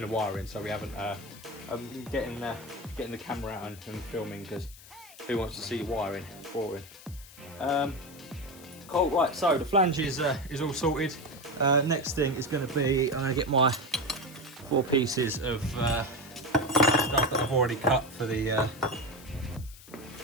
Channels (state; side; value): noise; left; hiss, 20 dB below the sound